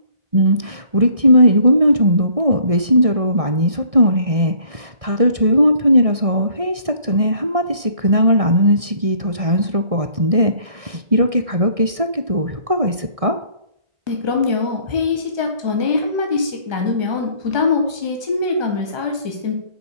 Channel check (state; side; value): late; left; 1.6 ms